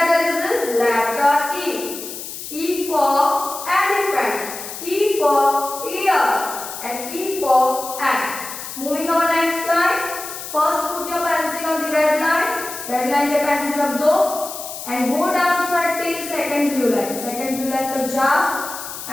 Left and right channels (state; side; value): noise; left; hiss, 9 dB below the sound